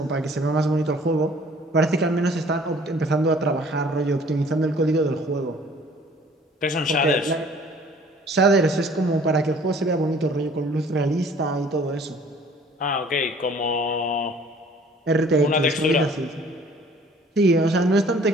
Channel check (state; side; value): normal; both; correlation 0.53